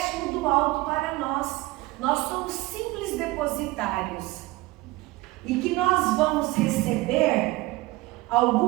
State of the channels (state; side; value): quieter; left; 19.9 dB